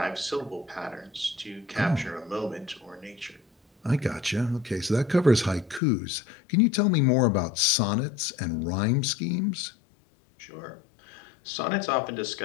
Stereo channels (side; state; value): right; drops out; at 5.8 s